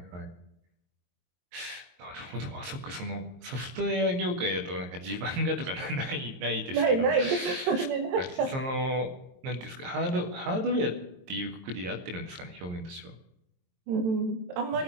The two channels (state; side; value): late; left; 22 ms